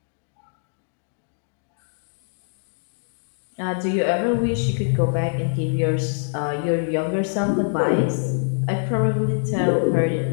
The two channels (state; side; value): silent; right; digital silence